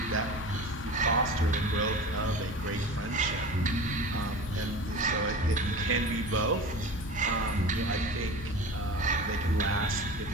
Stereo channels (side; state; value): left; noise; hum, 15 dB below the sound